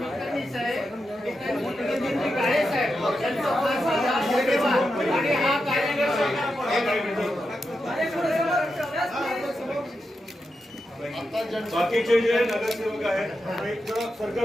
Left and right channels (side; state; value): both; normal; correlation 0.88